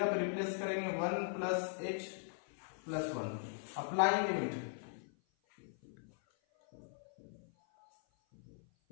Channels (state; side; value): silent; right; 51 dB below the other